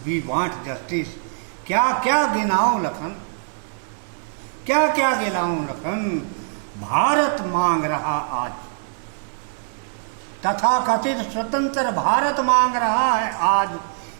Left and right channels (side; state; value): left; silent; digital silence